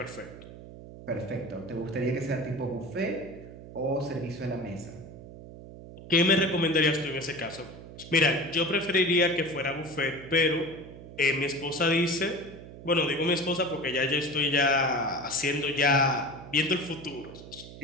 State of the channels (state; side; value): noise; right; hum, 15 dB below the sound